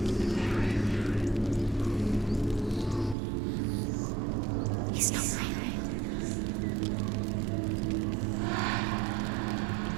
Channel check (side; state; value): left; drops out; at 3.2 s